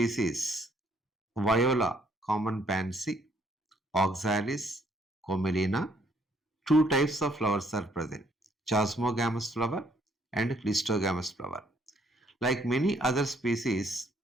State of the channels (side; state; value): both; normal; correlation 0.67